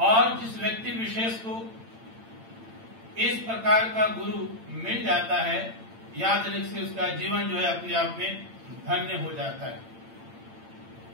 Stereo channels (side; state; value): left; late; 8.9 ms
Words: जिस व्यक्ति विशेष को इस प्रकार का गुरु मिल जाता है, याद रखिए उसका जीवन जो है अपने आप में धन्य हो जाता है।